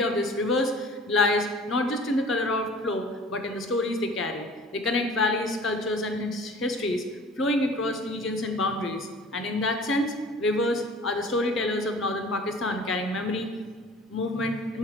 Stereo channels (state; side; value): normal; both; correlation 0.46